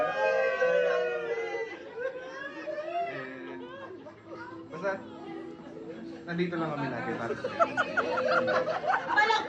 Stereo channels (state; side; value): identical; both; correlation 1.00